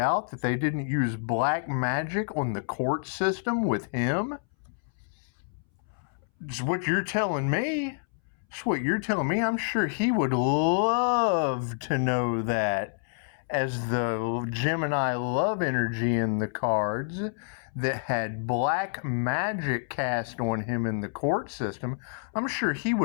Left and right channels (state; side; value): silent; right; 59 dB below the other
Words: that they didn't use black magic on the court system with him? It's what you're telling me. It's what you're telling me. I'm sure he would love to know that, as the Gemini love energy in the cards that had black magic cast on him in the court system. I'm sure he